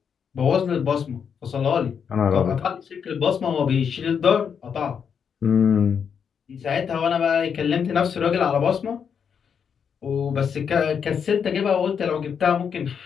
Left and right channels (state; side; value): quieter; right; 7.1 dB